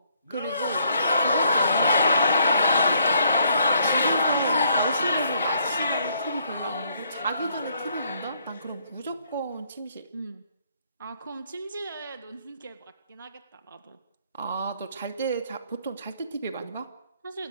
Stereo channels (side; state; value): both; inverted; correlation -0.69